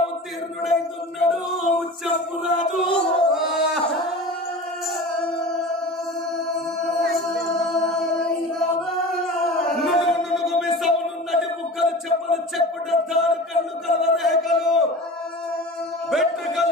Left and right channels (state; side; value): normal; both; correlation 0.35